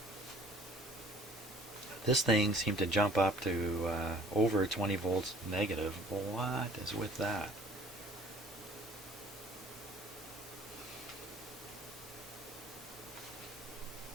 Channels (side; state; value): both; normal; correlation 0.52